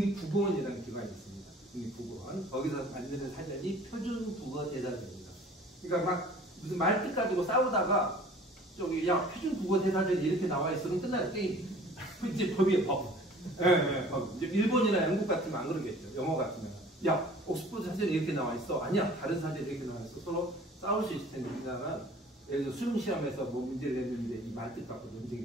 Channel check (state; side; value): normal; both; correlation 0.49